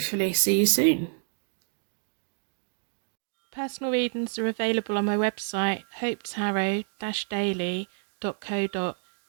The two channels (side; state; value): left; silent; digital silence